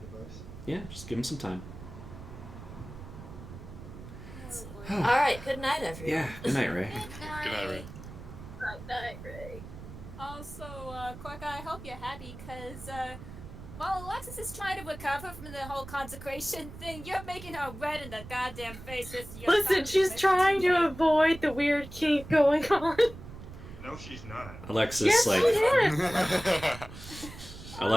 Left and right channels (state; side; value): noise; right; rumble, 14 dB below the sound